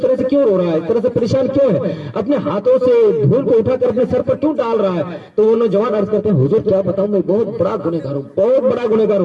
तरह से क्यों रो रहा है, इस तरह से परेशान क्यों है, अपने हाथों से धूल को उठाकर अपने सर पर क्यों डाल रहा है। तो वो नौजवान अर्ज करते हैं, हुजूर क्या बताऊं मैं बहुत बड़ा गुनहगार हूँ, बहुत बड़ा गुनहगार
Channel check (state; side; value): identical; both; correlation 1.00